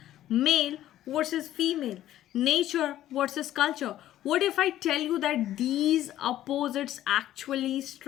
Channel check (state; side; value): quieter; right; 13.1 dB